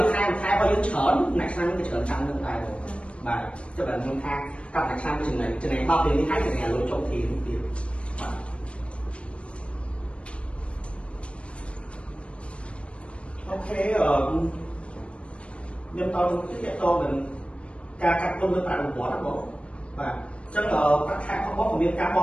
ួយខែរបស់យើងច្រើនណាឆ្នាំយើងក៏ច្រើនចាំនឹងដែរបាទចុះបើខ្ញុំថាកាប់ណាឆ្នាំចំណេញ10ពេលនេះហើយចំណេញលុយចុះទីទៀតបាទអូខេខ្ញុំតទៅទៀតតទៅការកាត់ទុនលើប្រាក់រង្វាន់ណាបងបាទអញ្ចឹងប្រាក់ខែរបស់បងក៏មានការប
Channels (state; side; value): late; right; 0.060 ms